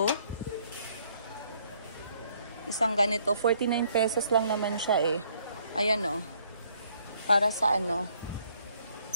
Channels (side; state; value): both; inverted; correlation -0.65